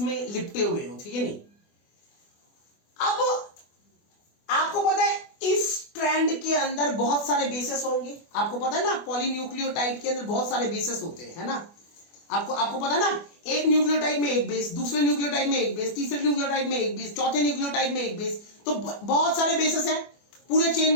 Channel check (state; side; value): late; right; 24 ms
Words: में लिपटे हुए हो, ठीक है नहीं? अब आपको पता है इस स्ट्रैंड के अंदर बहुत सारे बेसेस होंगे, आपको पता है ना? पॉलीन्यूक्लियोटाइड के अंदर बहुत सारे बेसेस होते हैं, है ना? आपको पता है ना? एक न्यूक्लियोटाइड में एक बेस, दूसरे न्यूक्लियोटाइड में एक बेस, तीसरे न्यूक्लियोटाइड में एक बेस, चौथे न्यूक्लियोटाइड में एक बेस। तो बहुत सारे बेसेस हैं पूरे चेन